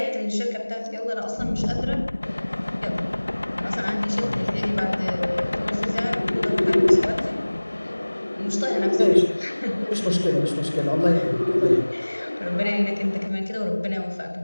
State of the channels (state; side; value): inverted; both; correlation -1.00